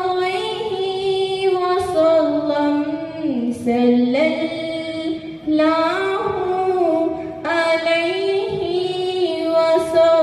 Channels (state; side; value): identical; both; correlation 1.00